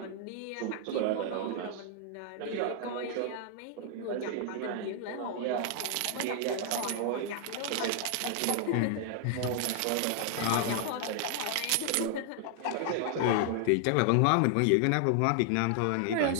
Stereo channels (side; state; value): both; different; correlation 0.00